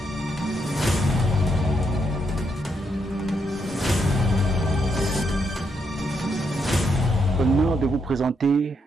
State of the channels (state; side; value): normal; both; correlation 0.79